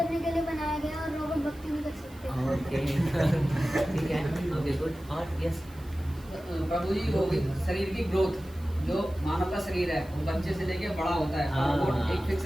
के लिए बनाया गया और रोबोट भक्ति नहीं कर सकते। ओके, ठीक है, ओके गुड। और यस प्रभु जी, वो शरीर की ग्रोथ, जो मानव का शरीर है वो बच्चे से लेके बड़ा होता है, रोबोट एक फिक्स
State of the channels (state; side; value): noise; right; hiss, 24 dB below the sound